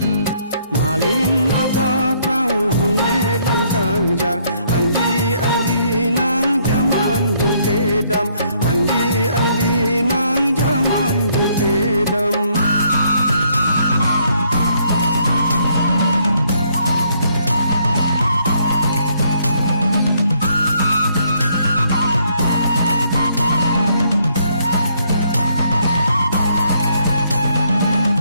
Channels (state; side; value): inverted; both; correlation -0.69